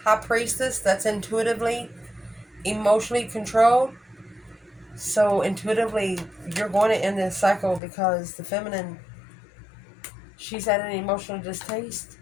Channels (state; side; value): drops out; right; at 7.8 s